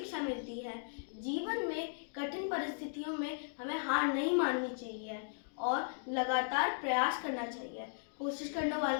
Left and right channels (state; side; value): silent; right; digital silence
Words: मिलती है, जीवन में कठिन परिस्थितियों में हमें हार नहीं माननी चाहिए और लगातार प्रयास करना चाहिए। कोशिश करने